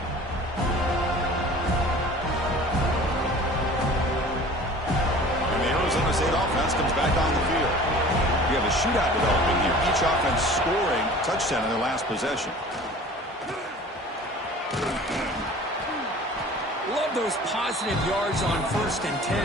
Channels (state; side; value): normal; both; correlation 0.44